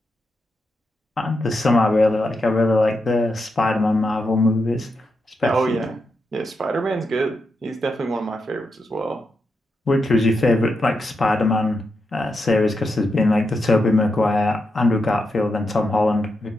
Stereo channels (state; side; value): normal; both; correlation 0.85